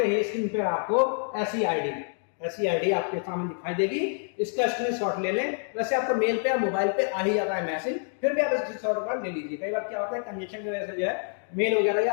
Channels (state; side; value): silent; right; 58 dB below the other